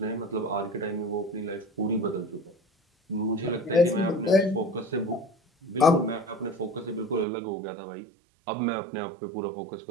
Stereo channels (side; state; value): left; drops out; at 7.2 s